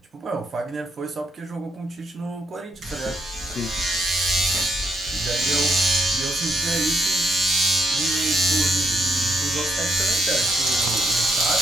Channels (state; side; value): normal; both; correlation 0.76